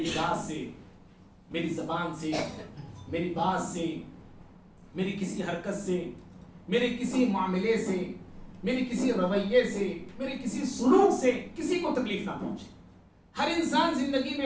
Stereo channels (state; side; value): identical; both; correlation 1.00